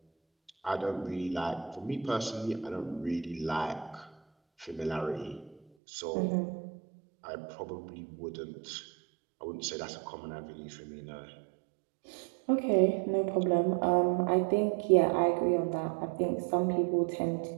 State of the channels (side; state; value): left; drops out; at 5.6 s